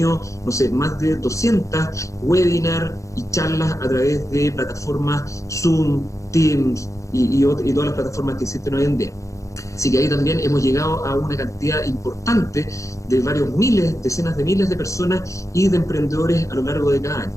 no sé, más de 200 webinars y charlas a través de plataformas Zoom, Teams y todas las plataformas que existen hoy en día. Así que ahí también hemos llegado a una cantidad importante de varios miles, decenas de miles de personas y de emprendedores a lo largo de cada año.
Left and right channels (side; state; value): right; late; 0.15 ms